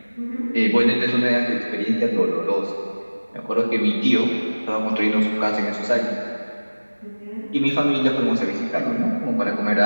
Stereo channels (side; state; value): both; inverted; correlation -1.00